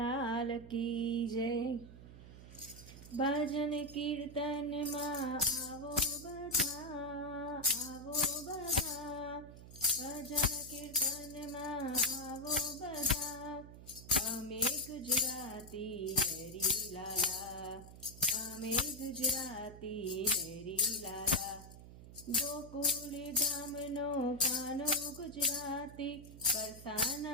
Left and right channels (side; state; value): right; noise; hum, 16 dB below the sound